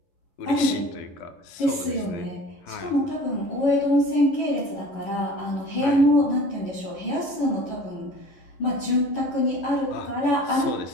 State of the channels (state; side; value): late; right; 11 ms